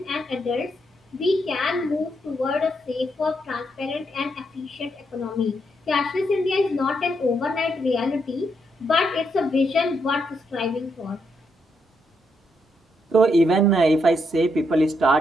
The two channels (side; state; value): both; normal; correlation 0.78